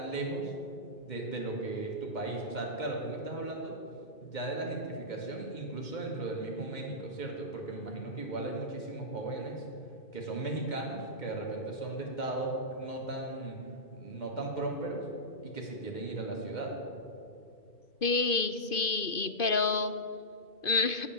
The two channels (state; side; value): late; right; 2.5 ms